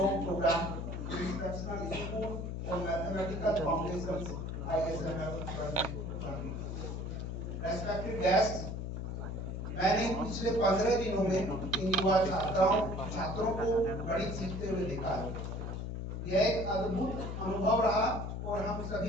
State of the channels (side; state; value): left; noise; hum, 4 dB below the sound